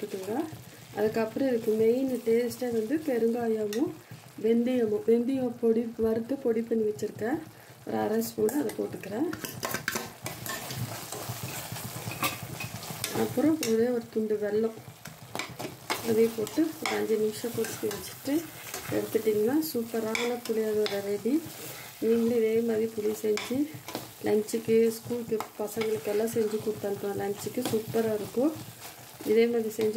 அதுக்கப்புறம் இதுக்கு மெயின் டேஸ்ட்டாக வந்து பெருங்காயமும் வெந்தயம் வறுத்து பொடி பண்ணி வச்சுருக்கேன், ஒரு 1/2 ஸ்பூன் அதை போட்டுக்கிறேன். அப்புறம் ஒரே ஒரு துண்டு வெல்லம் அதையும் போட்டு ஒரு 5 நிமிஷம் கொதிக்க வச்சுட்டு எடுத்துட்டிங்கன்னா சூப்பரான புளியோதரை ரெடி. நீங்களும் இதே மாதிரி புளி செஞ்சு லஞ்சுக்கு, ஸ்கூலுக்கு பசங்களுக்கெல்லாம் செஞ்சு கொடுத்தனுப்போம். லஞ்சுக்கு சூப்பராக இருக்கும். இதே மாதிரி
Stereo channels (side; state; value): both; identical; correlation 1.00